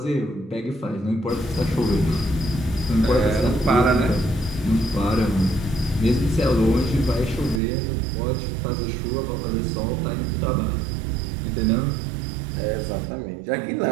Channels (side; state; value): left; drops out; at 7.6 s